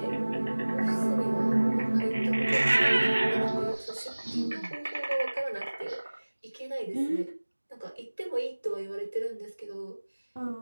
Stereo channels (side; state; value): both; inverted; correlation -1.00